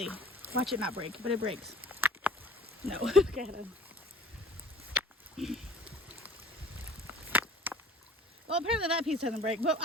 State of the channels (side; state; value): both; normal; correlation 0.49